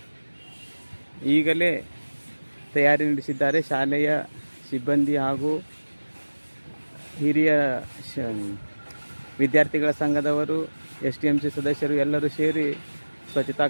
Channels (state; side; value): inverted; both; correlation -1.00